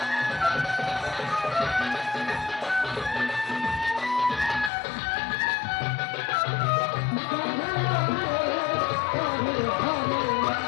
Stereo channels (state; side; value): drops out; right; at 4.7 s